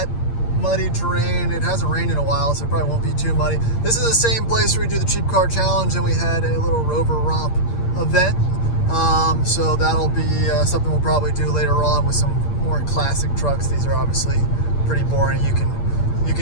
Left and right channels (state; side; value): late; right; 8.7 ms